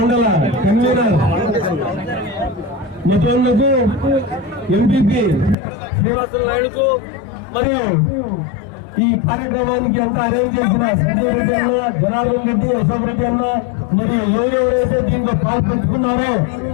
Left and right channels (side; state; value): right; drops out; at 5.6 s